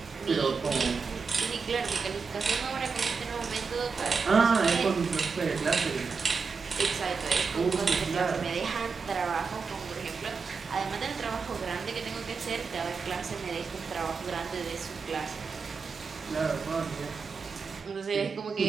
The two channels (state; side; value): quieter; left; 5.1 dB